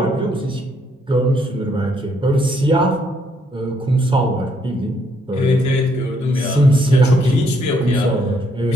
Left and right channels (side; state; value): both; normal; correlation 0.71